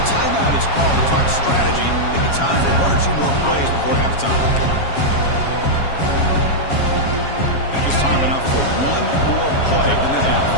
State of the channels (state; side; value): late; right; 7.3 ms